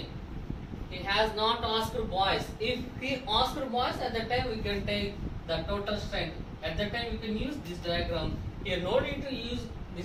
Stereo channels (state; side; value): identical; both; correlation 1.00